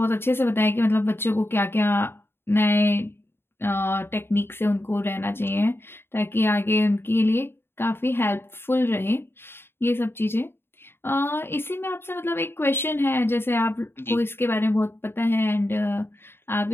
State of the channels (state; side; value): late; right; 0.11 ms